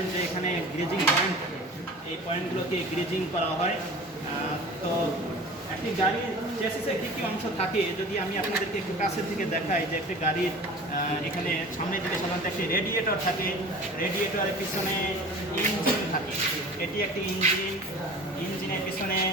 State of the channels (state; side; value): normal; both; correlation 0.40